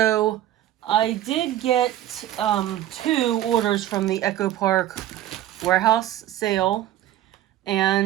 I did get two orders from the Echo Park warehouse sale,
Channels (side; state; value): left; quieter; 13.1 dB